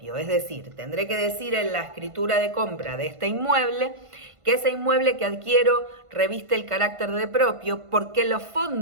Es decir, tendré que decir en la escritura de compra de este inmueble que ese inmueble que adquiero reviste el carácter de propio porque los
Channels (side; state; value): left; late; 1.5 ms